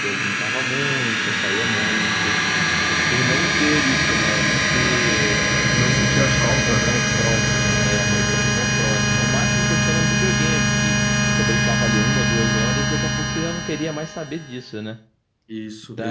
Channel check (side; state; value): both; identical; correlation 1.00